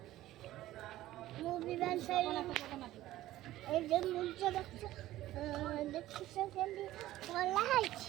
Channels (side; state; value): left; quieter; 15.1 dB